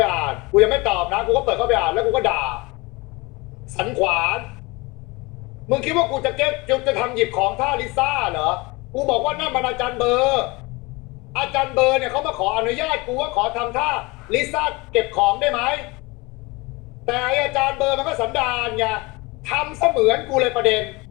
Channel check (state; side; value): quieter; right; 24.7 dB